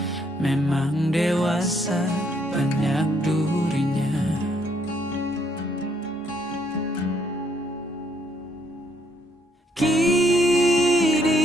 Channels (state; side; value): normal; both; correlation 0.70